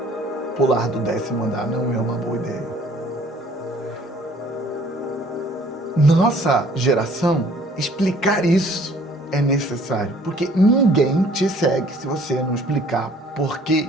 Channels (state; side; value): normal; both; correlation 0.56